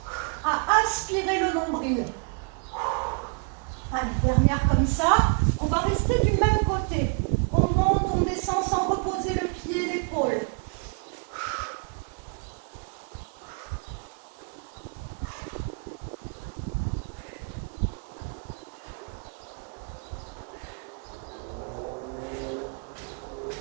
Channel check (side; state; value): left; quieter; 37.4 dB